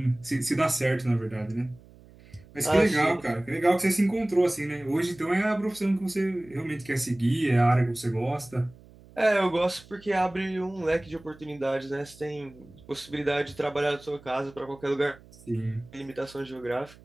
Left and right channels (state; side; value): noise; right; hum, 23 dB below the sound